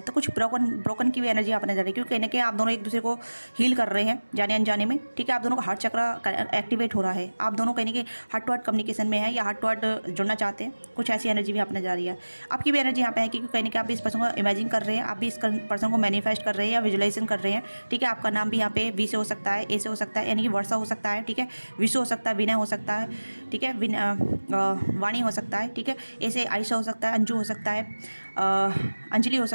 कुछ ब्रोकन की भी एनर्जी आप नजर आ रही है, क्योंकि कहीं ना कहीं आप दोनों एक दूसरे को हील कर रहे हैं जाने अनजाने में, ठीक है। आप दोनों का हार्ट चक्र एक्टिवेट हो रहा है, आप दोनों कहीं ना कहीं हार्ट टू हार्ट कम्युनिकेशन में है, या हार्ट टू हार्ट जुड़ना चाहते हैं। कुछ ऐसी एनर्जी भी आप नजर आ रही है। आपकी भी एनर्जी यहाँ पे है, क्योंकि कहीं ना कहीं आप भी इस पर्सन को इमेजिन कर रहे हैं, आप भी इस पर्सन को मैनिफेस्ट कर रहे हैं या विजुलाइजेशन कर रहे हैं, ठीक है। आपका नाम भी यहाँ पे वी से हो सकता है, ए से हो सकता है, यानी कि वर्षा हो सकता है, ठीक है। विशु हो सकता है, विनय हो सकता है, ठीक है। वाणी हो सकता है, ठीक है। ए से आयशा हो सकता है, अंजू हो सकता है, अंजलि हो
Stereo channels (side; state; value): both; inverted; correlation -1.00